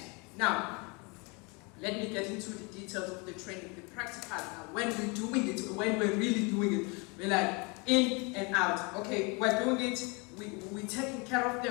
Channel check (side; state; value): right; quieter; 30.0 dB